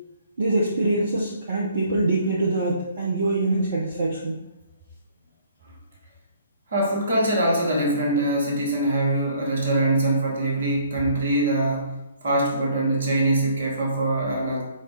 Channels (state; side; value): inverted; both; correlation -0.60